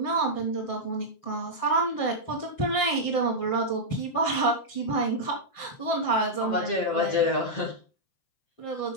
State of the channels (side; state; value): right; late; 7.6 ms